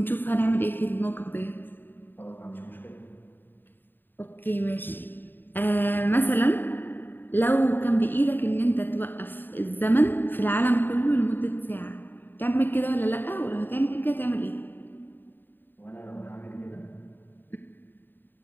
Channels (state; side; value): late; right; 0.094 ms